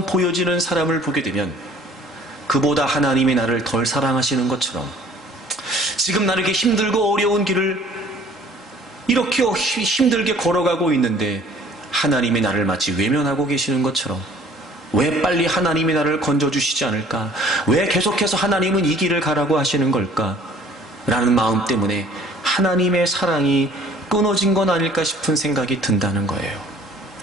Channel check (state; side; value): normal; both; correlation 0.54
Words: 보여지는 사람을 보게 되면 그보다 하나님이 나를 덜 사랑하시는 것처럼, 지금 나를 이렇게 힘들고 어려운 길을 이렇게 힘들게 걸어가고 있는데 하나님이 나를 마치 외면하고 계시는 것처럼, 왜 빨리 하나님이 나를 건져주시지 않을까? 왜 계속해서 하나님은 이 길을 가라고 하시는 걸까? 라는 마음 때문에 하나님의 사랑이 끊어진 건 아닐까 싶은 생각이 든다는 거예요.